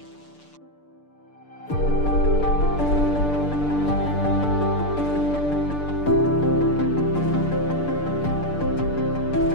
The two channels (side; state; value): right; late; 6.8 ms